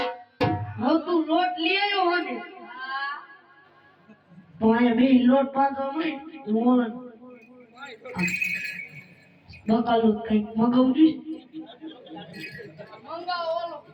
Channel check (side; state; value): both; identical; correlation 1.00